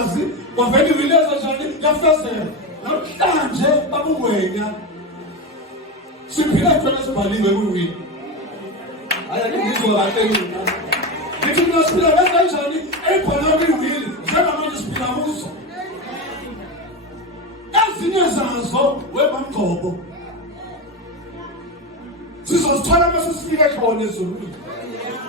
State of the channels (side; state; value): both; normal; correlation 0.18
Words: kwavela ivileza njani yafezela. Namhlanje babungwenya siphila khona sibhaliwe kuwini. Ayangizwa kahle mina. Ngithi mina siphila kanjani ebhalwe kuwini njengamanje siphila kuzo. Ezinye zazo webamgcobo. Sizozithola mase sifike khona ezulwini.